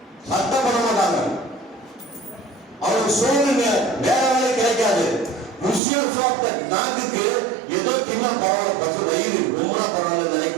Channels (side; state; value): left; drops out; at 5.8 s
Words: மாட்டாங்க. அவனுக்கு சோறுங்க வேற வேலை கிடைக்காது. ருசியம் சாப்பிட்ட நாக்குக்கு ஏதோ தின்ன பரவாயில்ல, பசு வயிறு ரொம்ப பரவாயில்ல